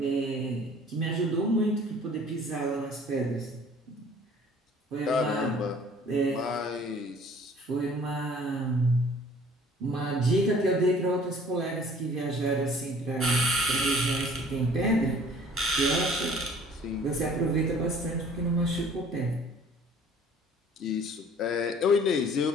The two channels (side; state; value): both; normal; correlation 0.52